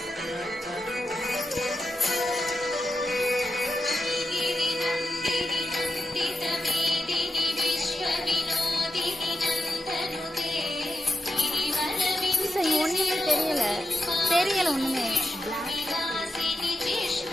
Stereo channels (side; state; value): both; normal; correlation 0.87